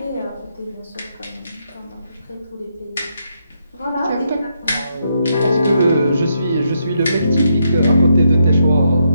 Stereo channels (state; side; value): inverted; both; correlation -0.78